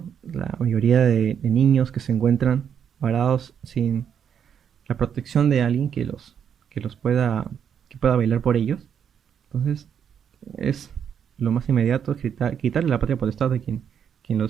La mayoría de niños que se encuentran varados sin la protección de alguien que los pueda, que pueda velar por ellos. Entonces, es lo más inmediato, es quitarle la patria potestad a quien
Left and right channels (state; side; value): quieter; left; 8.1 dB